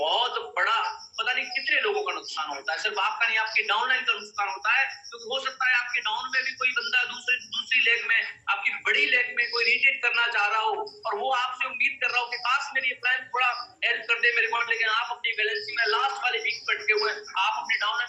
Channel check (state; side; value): identical; both; correlation 1.00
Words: बड़ा, पता नहीं कितने लोगों का नुकसान होता है, सिर्फ आपका नहीं, आपके डाउनलाइन का नुकसान होता है। क्योंकि हो सकता है आपके डाउन में भी कोई बंदा दूसरी लेग में, आपकी बड़ी लेग में कोई रिट्रीट करना चाह रहा हो और वो आपसे उम्मीद कर रहा हो कि काश मेरी प्लान थोड़ा हेल्प कर दे मेरे को, लेकिन आप अपनी बैलेंसिंग में लास्ट वाले वीक पे अटके हुए हैं। आप अपने